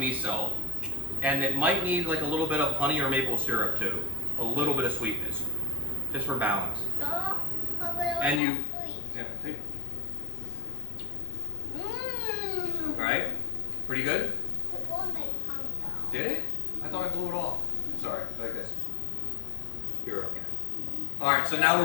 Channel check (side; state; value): right; drops out; at 8.4 s